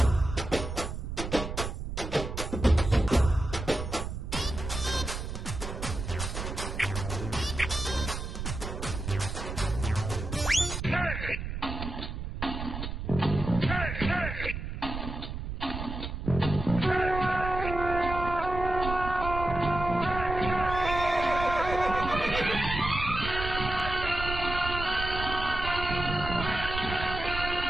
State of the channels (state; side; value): noise; right; rumble, 6 dB below the sound